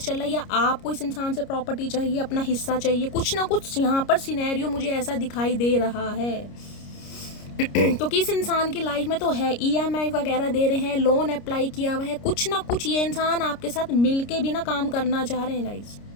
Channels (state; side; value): late; right; 29 ms